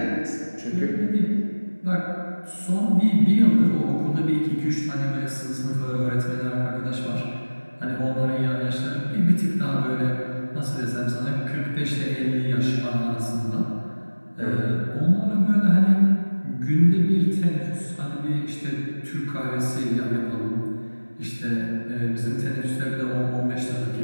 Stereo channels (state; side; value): inverted; both; correlation -1.00